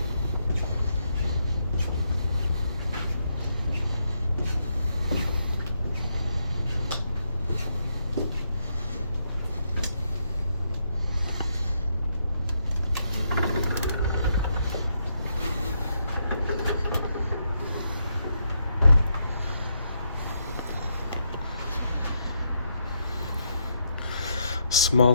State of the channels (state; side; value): inverted; both; correlation -0.78